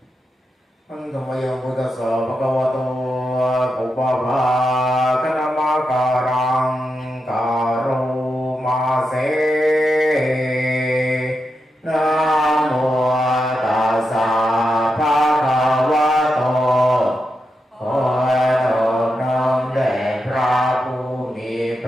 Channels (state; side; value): normal; both; correlation 0.86